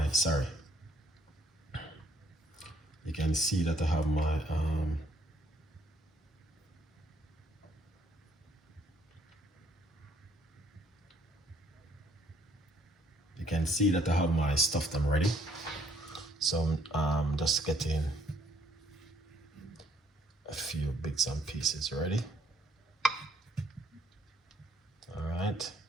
you can see that I have my you can see that I have my stuff them ready. So I'm just getting a few bits and pieces ready. All right,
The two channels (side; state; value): both; normal; correlation 0.67